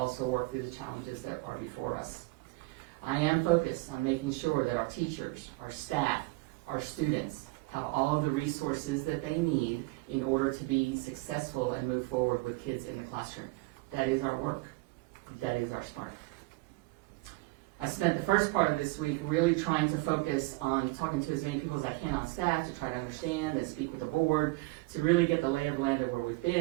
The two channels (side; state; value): left; quieter; 23.8 dB